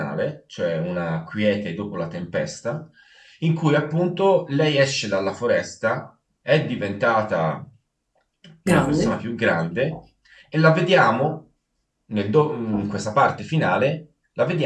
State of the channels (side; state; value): both; identical; correlation 1.00